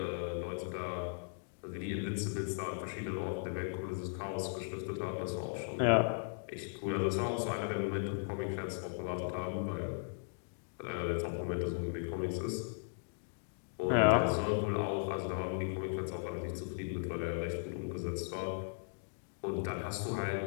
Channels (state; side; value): silent; right; digital silence